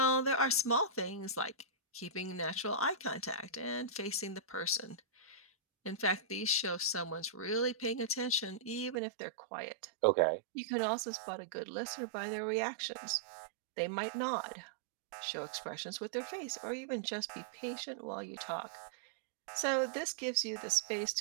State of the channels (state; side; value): drops out; left; at 9.0 s